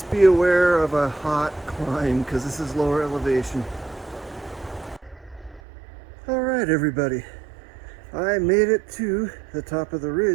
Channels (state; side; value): drops out; left; at 5.6 s